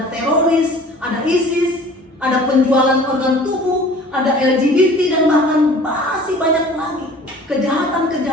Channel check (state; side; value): normal; both; correlation 0.47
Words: teroris, ada ISIS, ada penjualan organ tubuh, ada LGBT, dan bahkan masih banyak lagi